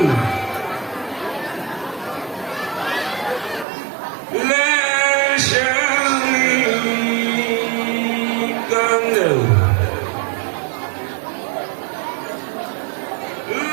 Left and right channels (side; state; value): left; drops out; at 3.7 s